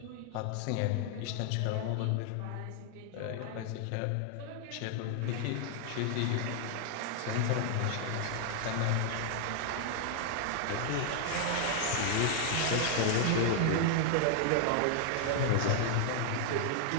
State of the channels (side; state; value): both; different; correlation 0.00